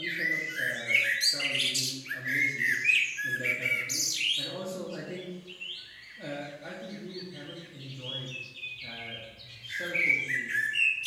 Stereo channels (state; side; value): identical; both; correlation 1.00